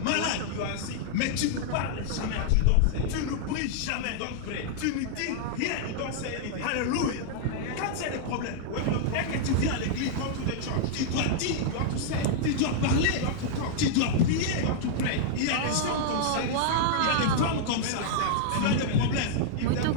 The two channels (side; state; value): both; different; correlation -0.01